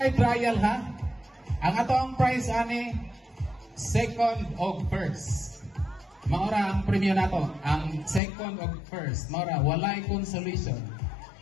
trial ha. Ang ato ang price ani, second o first. Maura ang premium nato, ang second o first. Maura, walay consolation.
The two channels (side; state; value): right; drops out; at 8.2 s